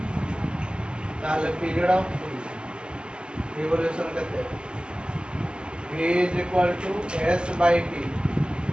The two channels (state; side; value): late; left; 0.050 ms